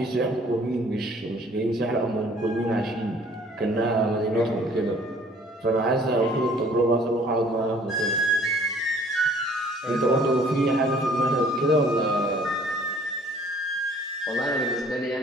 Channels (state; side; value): normal; both; correlation 0.56